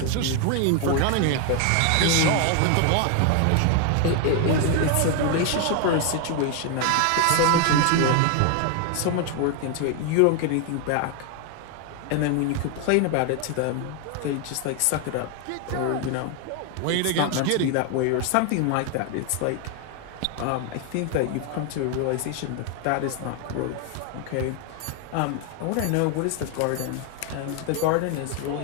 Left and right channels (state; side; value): different; both; correlation 0.01